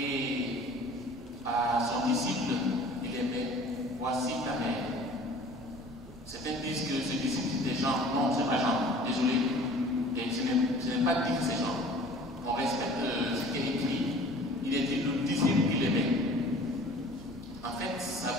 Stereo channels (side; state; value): both; normal; correlation 0.47